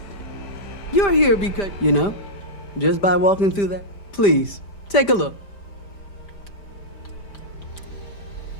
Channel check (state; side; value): late; right; 5.0 ms